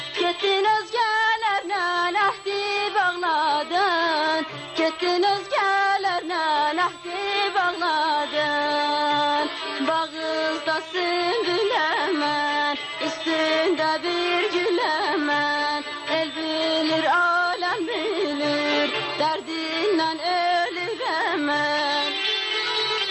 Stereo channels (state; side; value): identical; both; correlation 1.00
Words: Gittin özgelerle ahdi bağladın. Gittin özgelerle ahdi bağladın. Bağızda sümbül hemen, üstünde bir gül hemen. El bilir, alem bilir, derdinden ölür hemen.